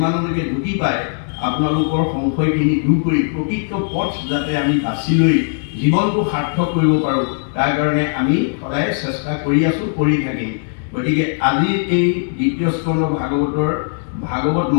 ঢুকি পায় আপোনালোকৰ সংশয়খিনি দূৰ কৰি প্ৰকৃত পথ যাতে আমি বাছি লৈ জীৱনটো সাৰ্থক কৰিব পাৰোঁ, তাৰ কাৰণে আমি সদায় চেষ্টা কৰি আছোঁ, কৰি থাকিম। গতিকে আজি এই দ্বিতীয় স্কন্ধ ভাগৱতৰ ভাগৱত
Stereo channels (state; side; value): silent; right; digital silence